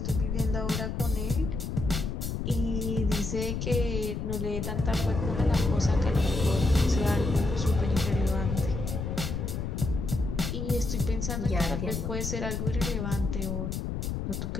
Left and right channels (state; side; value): noise; left; rumble, 3 dB below the sound